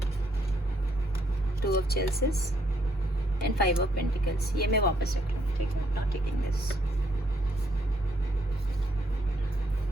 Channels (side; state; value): both; normal; correlation 0.72